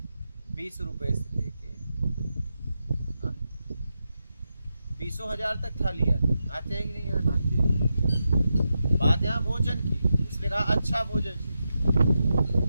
20 रुपए से लेके 20,000 तक थाली आते हैं कि नहीं आते? बात यहाँ भोजन की, उसने कहा अच्छा भोजन चाहिए,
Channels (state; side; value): inverted; both; correlation -0.88